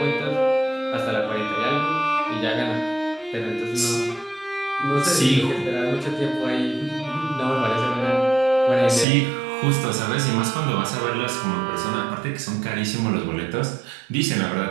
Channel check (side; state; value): left; drops out; at 9.1 s